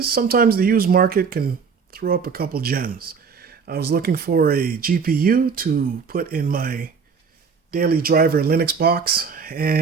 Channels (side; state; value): left; quieter; 5.7 dB